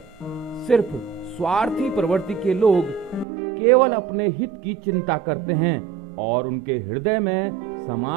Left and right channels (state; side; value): drops out; left; at 3.2 s